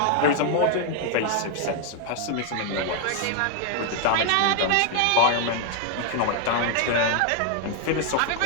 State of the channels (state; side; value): different; both; correlation 0.00